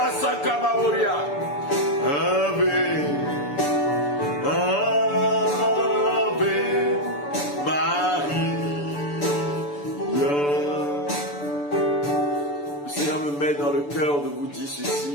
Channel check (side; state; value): right; late; 6.9 ms